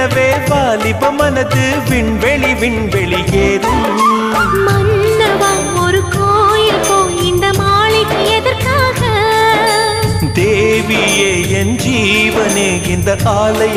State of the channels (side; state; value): both; identical; correlation 1.00